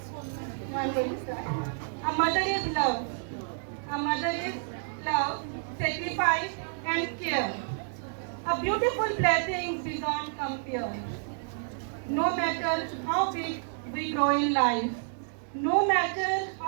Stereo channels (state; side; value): silent; left; digital silence